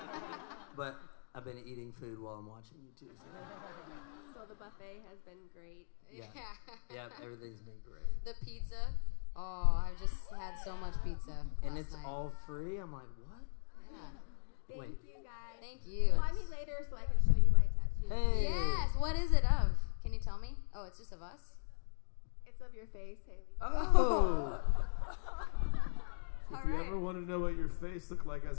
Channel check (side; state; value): right; silent; digital silence